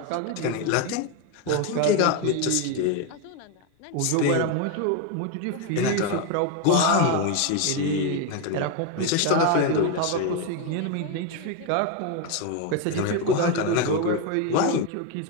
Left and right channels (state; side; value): different; both; correlation 0.02